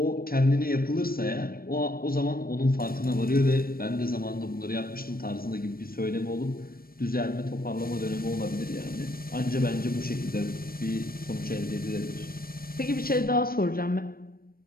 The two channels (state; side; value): late; right; 0.43 ms